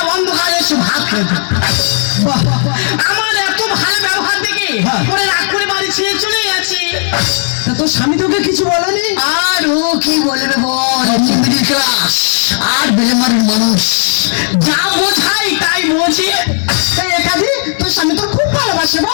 অন্ধকারে এসে ভাত খেত। আমার এত ভালো ব্যবহার দেখে ওরা রাগ করে বাড়ি ছেড়ে চলে গেছে। তা তোর স্বামী তোকে কিছু বলেনি? আর ও কি বলবে বল, মিডিল ক্লাস আর বেলেমারির মানুষ। যা বোঝাই তাই বোঝে। ভালোবাসি? এই কাজী তোর স্বামী তোর খুব ভালোবাসে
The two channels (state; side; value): silent; right; digital silence